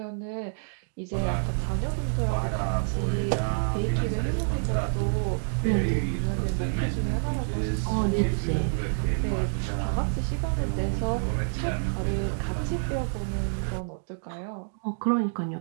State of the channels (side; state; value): left; silent; digital silence